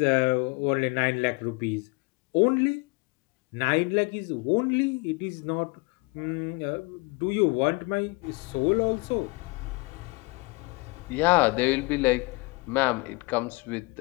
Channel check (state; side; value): quieter; right; 27.1 dB